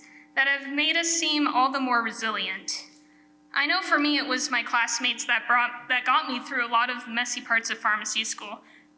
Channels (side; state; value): both; identical; correlation 1.00